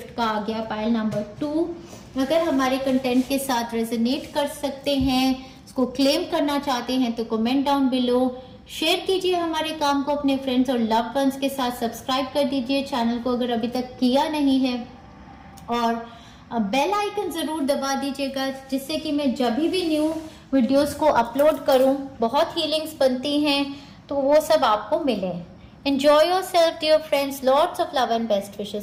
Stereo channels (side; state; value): both; identical; correlation 1.00